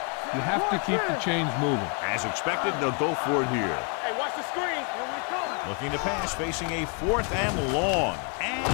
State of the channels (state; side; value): quieter; right; 36.3 dB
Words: you have to keep the chains moving. As expected, they'll go for it here. Hey, watch the screen. Here we come. Looking to pass, facing a 4th and long. And